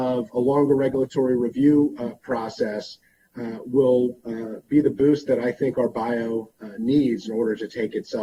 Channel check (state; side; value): identical; both; correlation 1.00